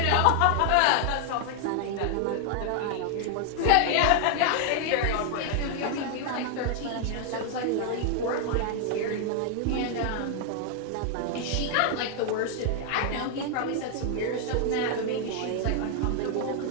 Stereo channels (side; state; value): both; different; correlation 0.00